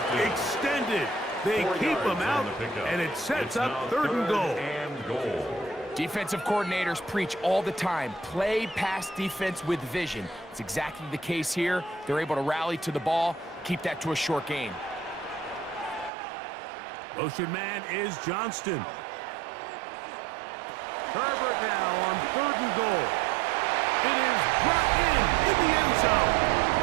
extended. They keep him out, and it sets up third and goal. Defensive coordinators preach all the time, play pass defense with vision. It's exactly the case here. They're able to rally to the ball, keep that to a short gain. Motion man is Johnston. Herbert now on third and goal. It is brought in the end zone.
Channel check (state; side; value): drops out; left; at 16.1 s